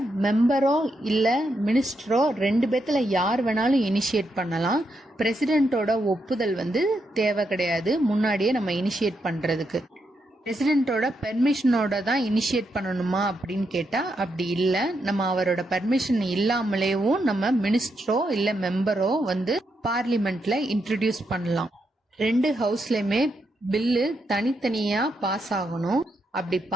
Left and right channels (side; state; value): both; normal; correlation 0.81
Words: மெம்பரோ இல்ல மினிஸ்டரோ 2 பேத்துல யார் வேணாலும் இனிஷியேட் பண்ணலாம். பிரசிடென்ட்டோட ஒப்புதல் வந்து தேவை கிடையாது முன்னாடியே நம்ம இனிஷியேட் பண்றதுக்கு. பிரசிடென்ட்டோட பெர்மிஷனோட தான் இனிஷியேட் பண்ணணுமா அப்படின்னு கேட்டா அப்படி இல்ல. நம்ம அவரோட பெர்மிஷன் இல்லாமலேயும் நம்ம மினிஸ்டரோ இல்ல மெம்பரோ வந்து பார்லிமெண்ட்ல இன்ட்ரோடியூஸ் பண்ணலாம். 2 ஹவுஸ்லயுமே பில்லு தனித்தனியா பாஸ் ஆகணும். அப்படி